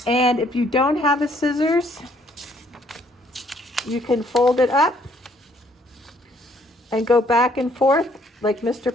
And if you don't have a scissors, you can fold it up and go back and forth like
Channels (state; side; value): normal; both; correlation 0.65